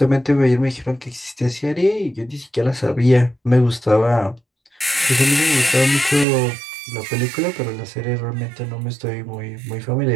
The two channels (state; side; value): drops out; left; at 6.2 s